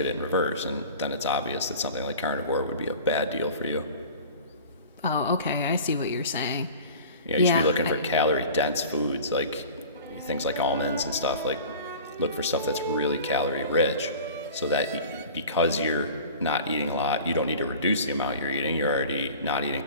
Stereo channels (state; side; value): inverted; both; correlation -0.39